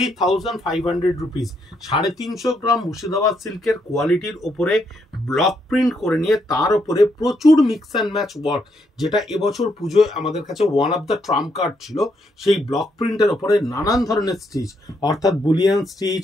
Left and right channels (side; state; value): both; normal; correlation 0.76